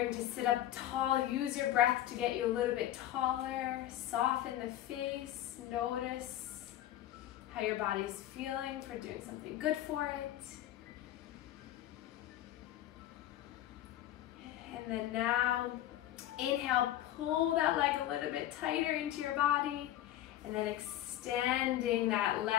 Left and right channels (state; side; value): quieter; right; 13.2 dB